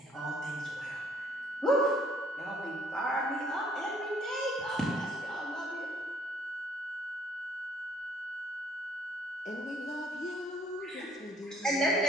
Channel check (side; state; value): both; normal; correlation 0.63